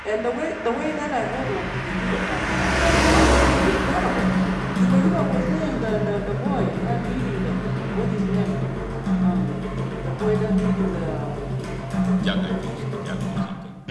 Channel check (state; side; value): identical; both; correlation 1.00